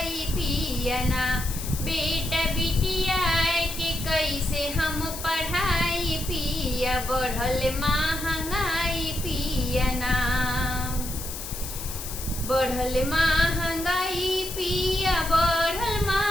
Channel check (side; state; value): left; noise; hiss, 9 dB below the sound